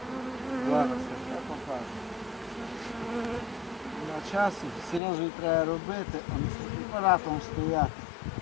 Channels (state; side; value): drops out; right; at 5.0 s